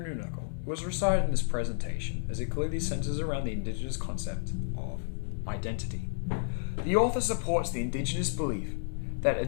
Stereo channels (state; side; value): silent; right; 57 dB below the other